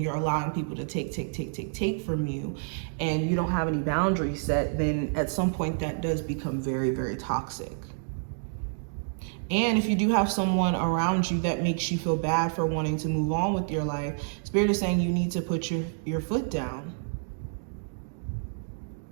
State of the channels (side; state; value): left; silent; digital silence